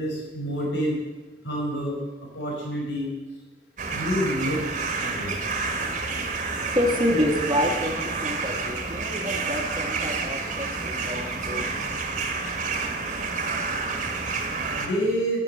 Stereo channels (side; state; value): both; normal; correlation 0.33